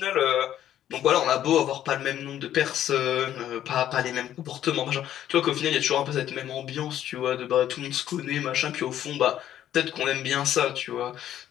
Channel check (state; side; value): quieter; right; 11.4 dB